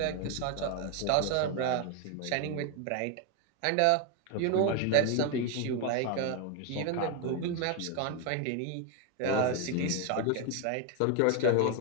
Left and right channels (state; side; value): different; both; correlation 0.01